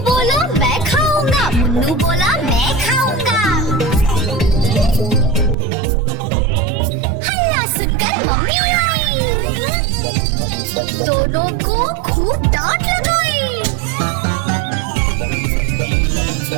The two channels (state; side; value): drops out; left; at 5.6 s